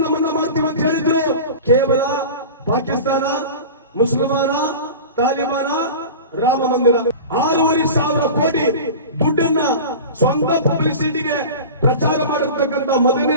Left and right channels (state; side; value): inverted; both; correlation -0.33